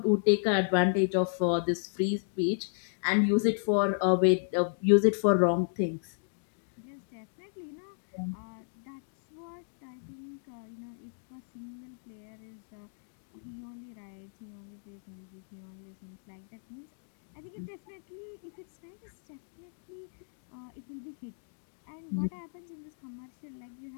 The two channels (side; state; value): right; silent; digital silence